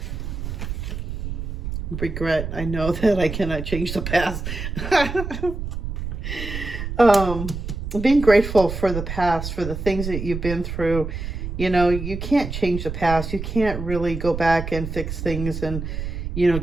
Regret. I know that I cannot change the past. Being grateful for the past, for the things that you've been through. You can't change the past. You can't really go back and fix things and,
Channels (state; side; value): noise; right; rumble, 5 dB below the sound